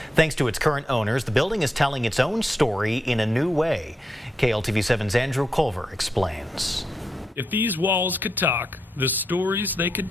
Thanks to its current owners, the building is telling its own story in a new way. KLTV7's Andrew Culver explains. If these walls could talk, the stories they could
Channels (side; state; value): both; normal; correlation 0.84